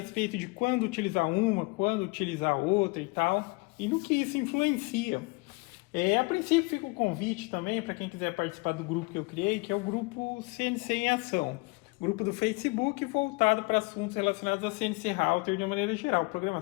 de quando utilizar uma, quando utilizar outra e tal, e no que isso influencia. A princípio fica o convite também para quem quiser participar do grupo que eu criei, que é o grupo CNC em Ação. Grupo do Facebook voltado para assuntos relacionados a CNC Router de uma maneira geral,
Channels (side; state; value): right; quieter; 27.4 dB